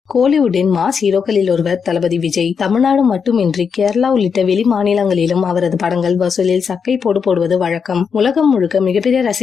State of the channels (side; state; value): right; quieter; 6.3 dB